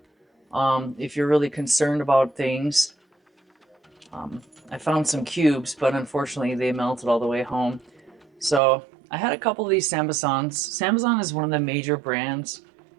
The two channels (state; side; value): drops out; left; at 8.6 s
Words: if you're really concerned about things. I found some cubes, but unfortunately they melted all the way home. So I had a couple of these Sambasans. Sambazan is one of the major brands